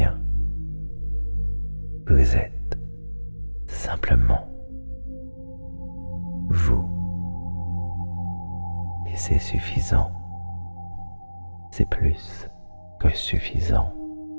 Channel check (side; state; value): both; inverted; correlation -1.00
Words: Vous êtes simplement vous. Et c'est suffisant. C'est plus que suffisant.